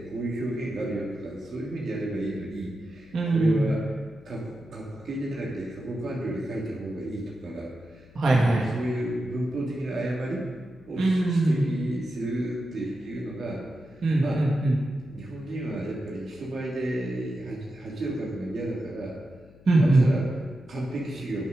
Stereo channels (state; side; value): noise; left; hum, 24 dB below the sound